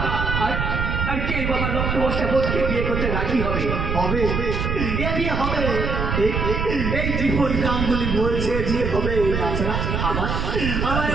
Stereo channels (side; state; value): right; noise; rumble, 1 dB below the sound